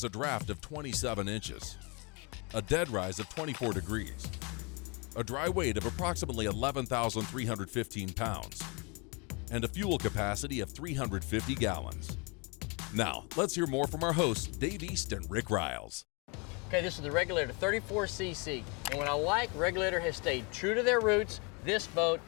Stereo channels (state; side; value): quieter; right; 31.2 dB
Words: a draft of 27 inches, a dead rise of 24 degrees, a dry weight of approximately 11,315 pounds, and a fuel capacity of 350 gallons. Now, let's hear more from our hosts, Dave East and Rick Ryals. Okay, this is the Regulator 34cc, and what I like, Regulator has stayed true to their roots. This boat